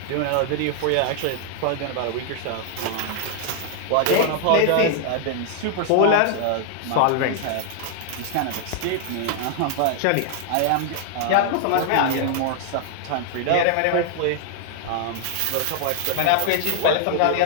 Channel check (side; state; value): both; different; correlation 0.00